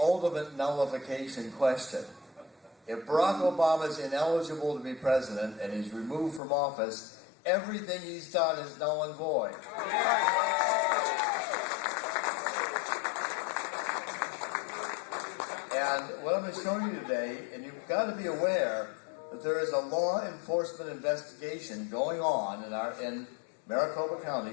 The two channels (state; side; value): drops out; right; at 6.4 s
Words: nullification question. If Barack Obama is ineligible to be president and he's removed from office, everything he's done is null and void. And what I'm going to show you today, and you've got to be aware that there is a law enforcement investigation going on in Maricopa